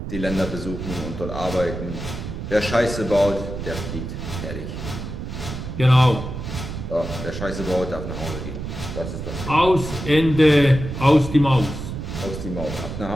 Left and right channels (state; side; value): noise; right; rumble, 7 dB below the sound